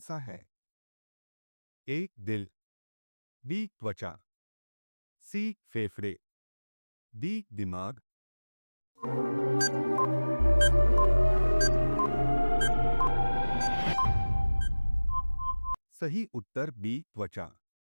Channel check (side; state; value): both; inverted; correlation -1.00